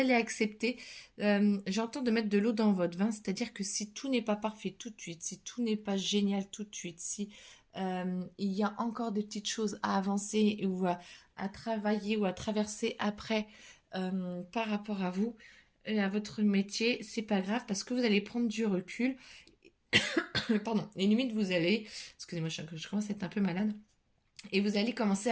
accepter, j'entends de mettre de l'eau dans votre vin, c'est-à-dire que si tout n'est pas parfait tout de suite, si tout n'est pas génial tout de suite, si il y a encore des petites choses à avancer ou à travailler ou à traverser après par rapport à vous et à votre métier, c'est pas grave parce que vous allez prendre du recul. Pardon, et limite vous allez, excusez-moi, je commence à être un peu malade. Et vous allez commencer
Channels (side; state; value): both; identical; correlation 1.00